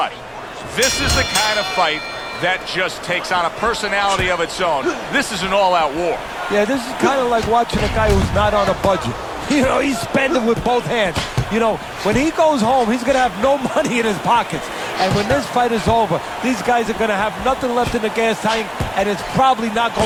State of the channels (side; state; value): both; identical; correlation 1.00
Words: This is the kind of fight that just takes on a personality of its own. This is an all-out war. Yeah, this is kind of like watching a guy who's not on a budget. You know, he's spending with both hands. You know, when he goes home, he's going to have no money in his pockets. And when this fight is over, these guys are going to have nothing left in the gas tank, and it's probably not